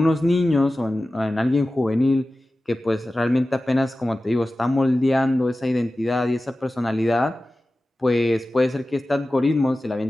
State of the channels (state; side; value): normal; both; correlation 0.96